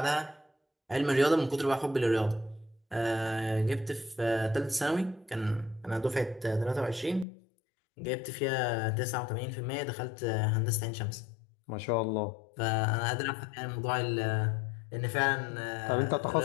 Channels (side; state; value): right; drops out; at 7.2 s